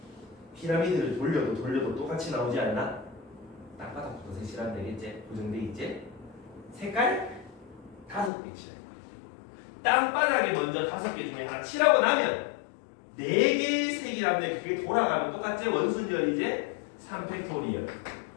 피라미드를 돌려도 똑같이 나오지 않나? 땅바닥부터 색칠하면 되겠지? 고정돼 있지? 색깔 5개 칠할 거야. 땅바닥에 먼저 5개 중에 하나 칠하고 나면 4개의 색이라면 그게 돌아가면 똑같지? 원순열이지? 3팩토리얼.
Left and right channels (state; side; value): drops out; right; at 8.3 s